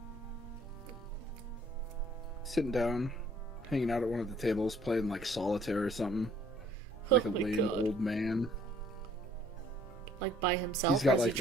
Sitting down, hanging out at one of the tables, playing like solitaire or something. Like a Oh my lame God. old man. Like by himself, He's got or is he like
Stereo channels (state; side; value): normal; both; correlation 0.60